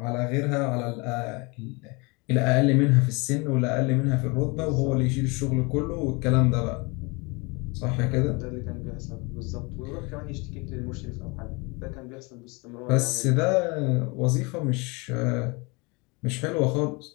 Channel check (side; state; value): right; quieter; 28.2 dB